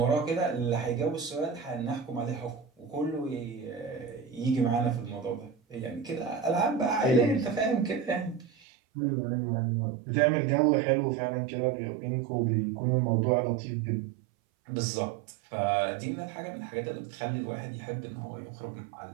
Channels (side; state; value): left; drops out; at 8.5 s